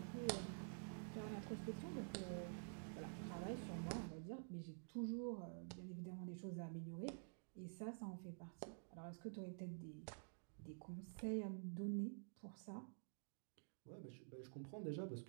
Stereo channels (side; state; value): left; silent; digital silence